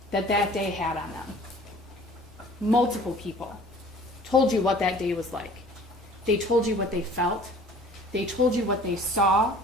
that day had on them. Multiple people told you what that day was like. They told you what they felt, they told you what they saw,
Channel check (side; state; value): both; normal; correlation 0.49